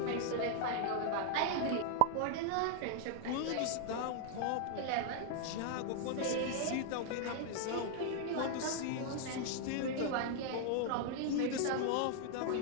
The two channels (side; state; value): both; different; correlation 0.00